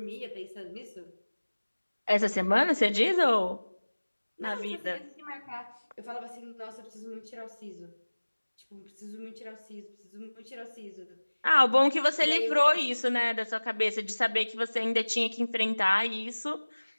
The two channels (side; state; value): both; inverted; correlation -1.00